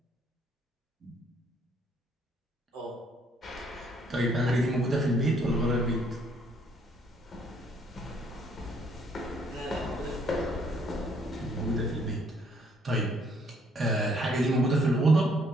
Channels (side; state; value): both; normal; correlation 0.66